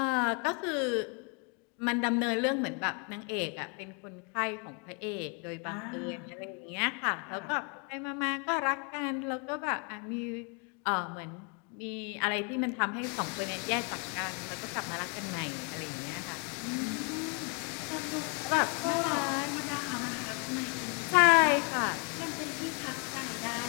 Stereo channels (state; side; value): quieter; right; 36.1 dB